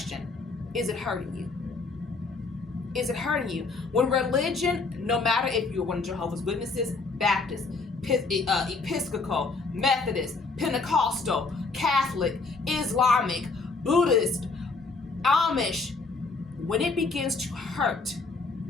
Is it hurting you? Is it hurting you? When religion, no matter if you're one of Jehovah's Witnesses, Baptist, Episcopal, Methodist, Pentecostal, Catholic, Islamic, Buddhist, Amish, when it begins to hurt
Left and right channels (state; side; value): quieter; right; 4.0 dB